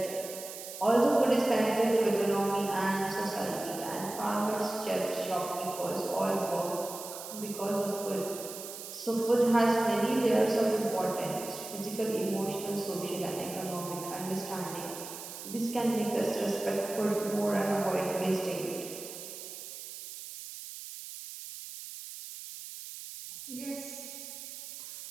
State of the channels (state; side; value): noise; right; hiss, 11 dB below the sound